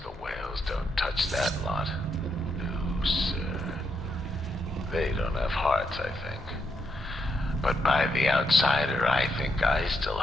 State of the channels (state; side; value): normal; both; correlation 0.80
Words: the whales don't touch that lot. No, sir. They don't have hearts, I think. But by the outsider, I think I still